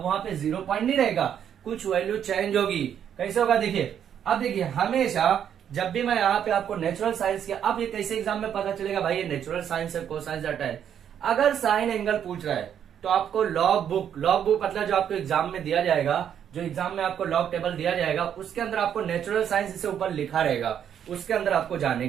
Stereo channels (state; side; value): quieter; left; 9.0 dB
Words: वहां पे 0 पॉइंट नहीं रहेगा, कुछ वैल्यू चेंज होगी। कैसे होगा देखिए, अब देखिए हमेशा जब भी मैं यहाँ पे आपको नेचुरल साइंस किया, अब ये कैसे एग्जाम में पता चलेगा भाई ये नेचुरल साइंस है, कोसाइंस डाटा है। अगर साइन एंगल पूछ रहा है तो आपको लॉग बुक मतलब जो आपको एग्जाम में दिया जाएगा, जो एग्जाम में आपको लॉग टेबल दिया जाएगा उसके अंदर आपको नेचुरल साइंस इसे ऊपर लिखा रहेगा, उसके अंदर आपको जाने